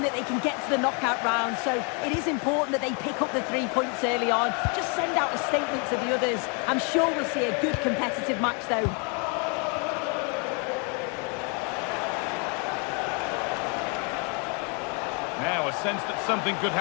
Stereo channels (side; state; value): right; quieter; 35.7 dB